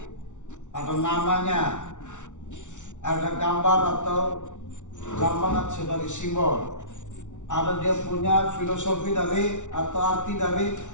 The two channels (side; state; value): right; late; 0.85 ms